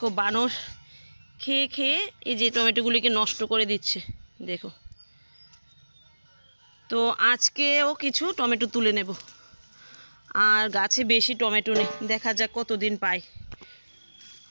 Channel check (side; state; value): both; inverted; correlation -1.00